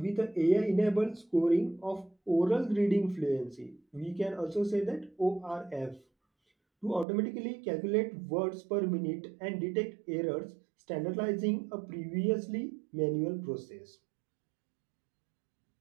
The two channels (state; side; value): drops out; left; at 7.1 s